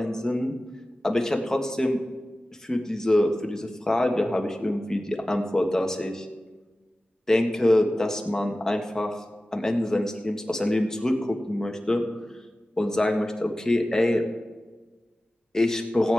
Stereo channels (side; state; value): both; normal; correlation 0.96